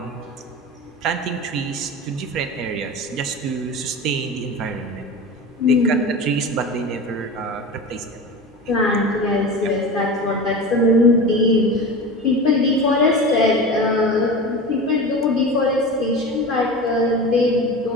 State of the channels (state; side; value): normal; both; correlation 0.30